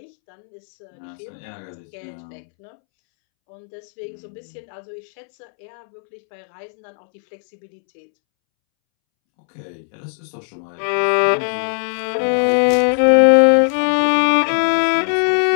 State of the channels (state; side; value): silent; right; 66 dB below the other